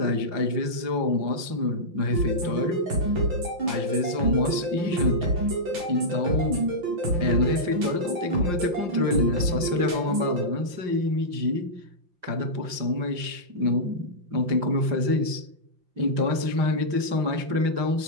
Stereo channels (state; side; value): late; left; 5.7 ms